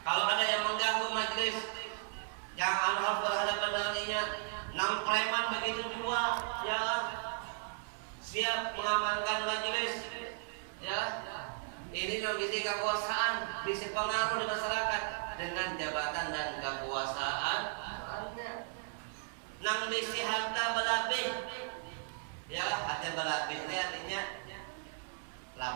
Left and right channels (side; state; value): left; silent; 54 dB below the other